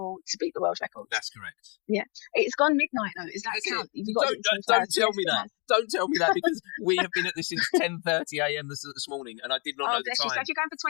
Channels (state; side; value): quieter; right; 33.1 dB